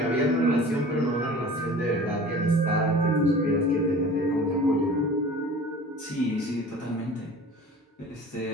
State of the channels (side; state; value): both; normal; correlation 0.42